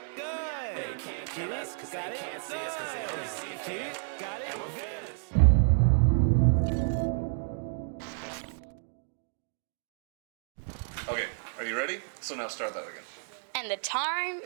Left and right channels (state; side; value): silent; left; digital silence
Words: Good. They can't kill us cause they can't see us cause they only see it. Get it? Got it? Good. Okay, are you ready? So now start that again. And the time.